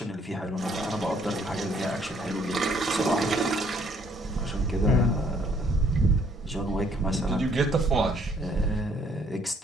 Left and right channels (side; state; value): both; normal; correlation 0.64